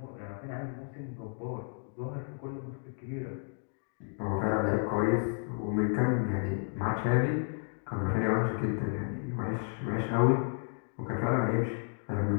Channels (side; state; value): right; silent; 56 dB below the other